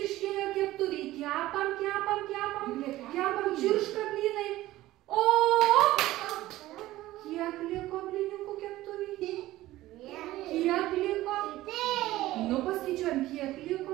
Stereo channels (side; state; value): left; quieter; 16.3 dB